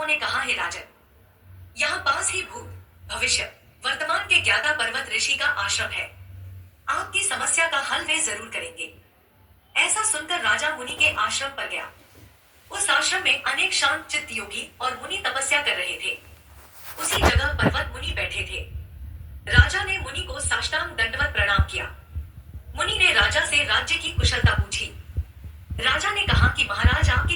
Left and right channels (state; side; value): identical; both; correlation 1.00